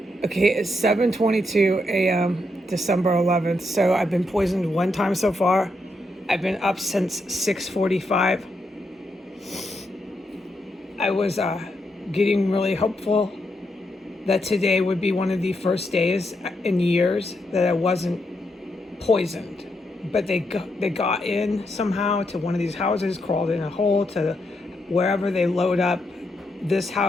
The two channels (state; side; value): normal; both; correlation 0.81